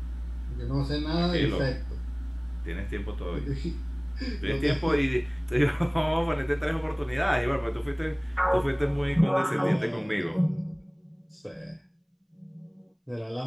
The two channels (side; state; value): both; identical; correlation 1.00